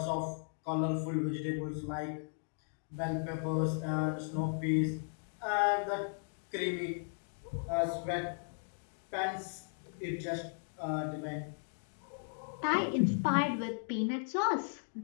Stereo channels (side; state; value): right; silent; digital silence